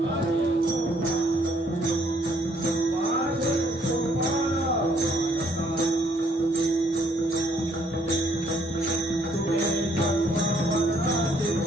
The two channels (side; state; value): both; normal; correlation 0.66